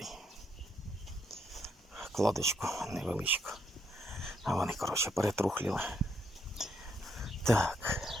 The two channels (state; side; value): normal; both; correlation 0.75